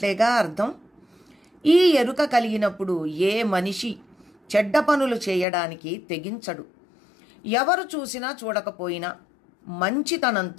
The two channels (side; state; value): right; drops out; at 5.5 s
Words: అర్థం. ఈ ఎరుక కలిగినప్పుడు ఏ మనిషి చెడ్డ పనులు చేయడానికి తెగించడు. ఎవరు చూసినా చూడకపోయినా